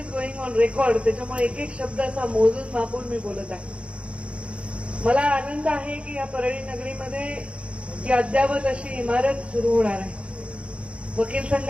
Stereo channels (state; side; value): late; left; 0.060 ms